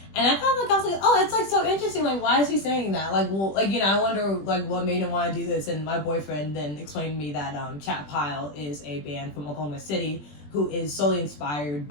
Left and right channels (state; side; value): late; right; 20 ms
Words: And I thought I was like, oh, it's so interesting. Why is he saying that? I wonder what made him want to do this. And my boyfriend then explained to me that Chat Pile is a band from Oklahoma City who is solely inspired